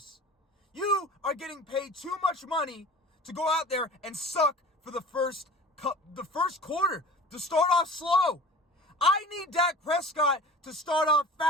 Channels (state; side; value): normal; both; correlation 0.41